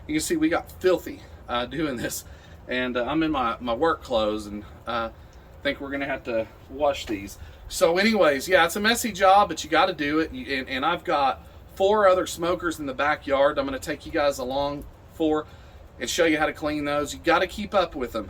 You can see we got filthy doing this, and I'm in my work clothes, and think we're gonna have to wash these. So anyways, yeah, it's a messy job, but you got to do it. And I've got 4 other smokers in the backyard I'm gonna take you guys along for and show you how to clean those. You got to keep up with them.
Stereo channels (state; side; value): identical; both; correlation 1.00